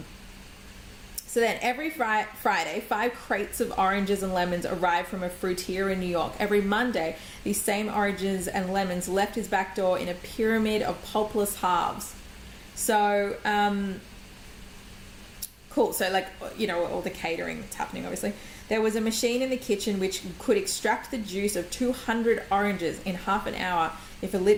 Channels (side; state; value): both; identical; correlation 1.00